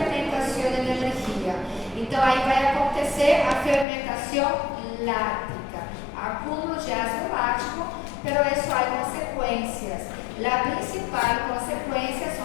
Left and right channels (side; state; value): right; drops out; at 3.9 s